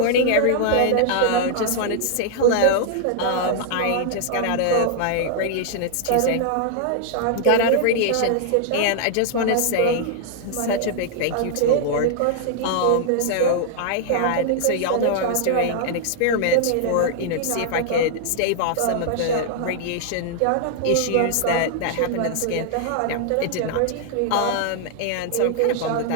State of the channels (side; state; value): both; different; correlation -0.01